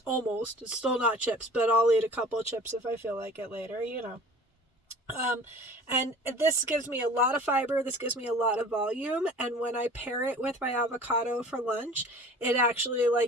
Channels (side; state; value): both; normal; correlation 0.44